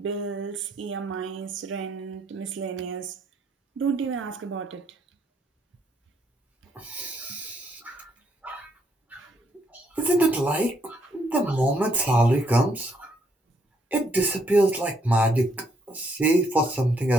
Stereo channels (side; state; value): both; normal; correlation 0.71